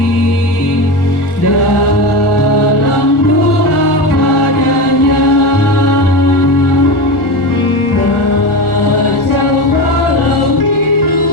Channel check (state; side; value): late; right; 1.4 ms